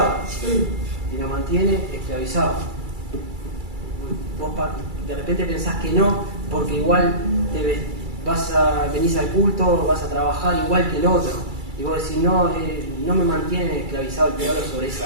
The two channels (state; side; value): late; left; 2.3 ms